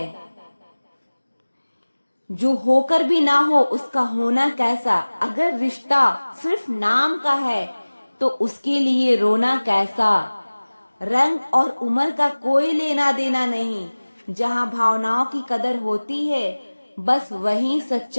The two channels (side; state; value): both; inverted; correlation -1.00